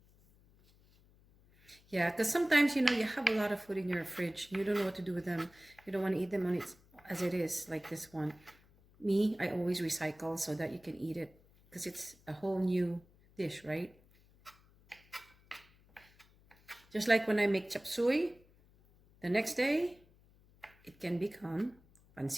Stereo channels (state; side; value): noise; left; hum, 28 dB below the sound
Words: Yeah, because sometimes, you have a lot of food in your fridge. You don't know what to do with them. You don't want to eat them as it is, like this one. Me, I always recycle so that you can eat it because it's a whole new dish, right? Just like when I make chop suey, the next day, it can become